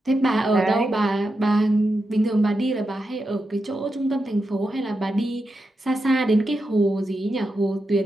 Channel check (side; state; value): both; normal; correlation 0.87